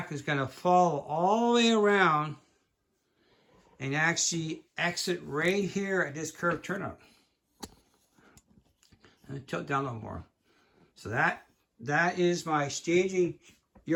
is going to follow all the way around and actually exit right here at this curved turnout. And tilt down a little more. So that is my staging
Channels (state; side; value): identical; both; correlation 1.00